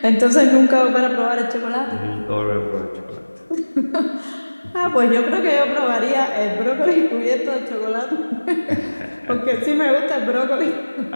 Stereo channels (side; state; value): both; inverted; correlation -1.00